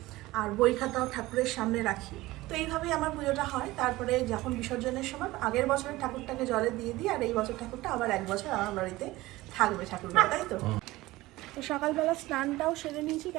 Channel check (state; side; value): quieter; left; 18.7 dB